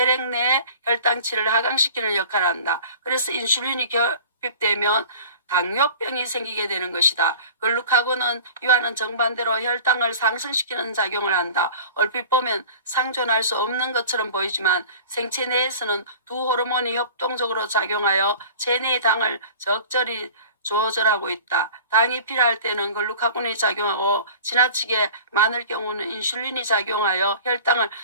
내 혈당치를 하강시키는 역할을 한다. 그래서 인슐린이 결핍되면 당뇨병이 생기게 되는 것이다. 글루카곤은 이와는 정반대로 혈당을 상승시키는 작용을 한다. 얼핏 보면 상존할 수 없는 것처럼 보이지만 생체 내에서는 두 호르몬이 협동적으로 작용하여 체내의 당을 적절히 조절하고 있다. 당이 필요할 때는 글루카곤이 작용하고 지나치게 많을 경우는 인슐린이 작용하여 혈당을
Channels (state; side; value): inverted; both; correlation -0.42